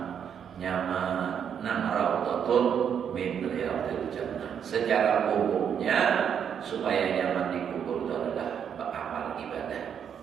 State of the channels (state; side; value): quieter; left; 8.1 dB